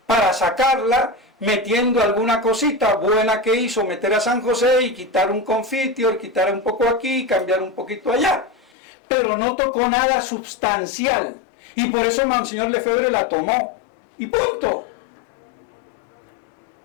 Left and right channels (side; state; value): right; drops out; at 8.7 s